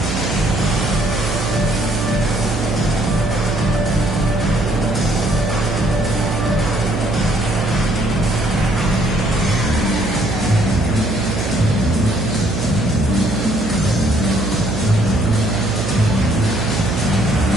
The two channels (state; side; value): noise; right; hum, 4 dB below the sound